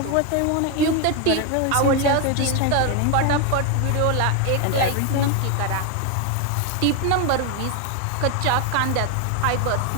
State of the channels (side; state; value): both; different; correlation 0.01